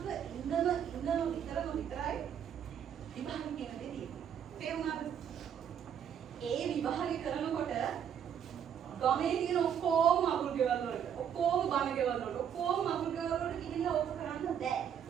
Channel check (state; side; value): quieter; left; 8.7 dB